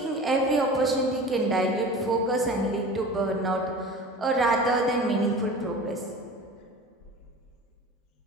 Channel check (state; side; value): normal; both; correlation 0.37